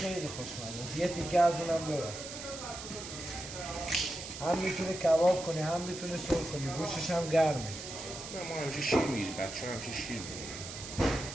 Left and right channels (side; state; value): right; noise; hiss, 10 dB below the sound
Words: خوشمزه. یه تیکه از اونم ببر. هم میتونه کباب کنی هم میتونه سرخ کنی. گوشتش هم گرمه. نه ما همیشه شیر میگیریم. بچه ها همیشه شیر میگیریم.